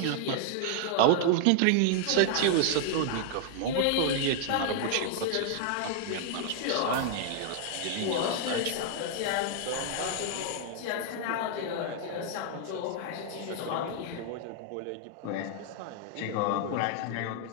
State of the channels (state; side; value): different; both; correlation 0.00